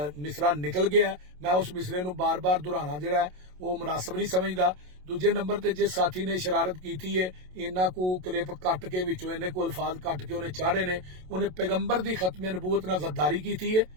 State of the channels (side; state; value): left; late; 27 ms